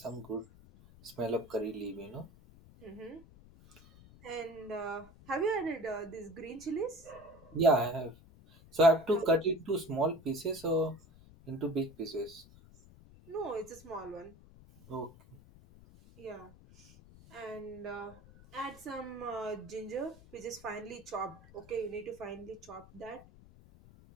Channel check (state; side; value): noise; left; rumble, 22 dB below the sound